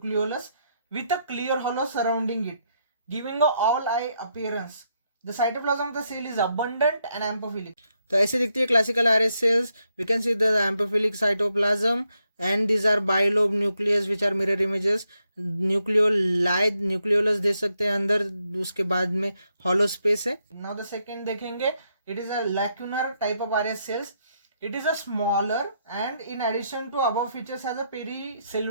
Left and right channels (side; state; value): both; inverted; correlation -0.79